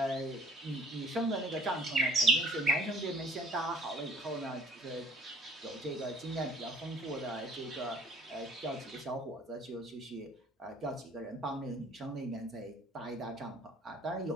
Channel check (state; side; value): normal; both; correlation 0.54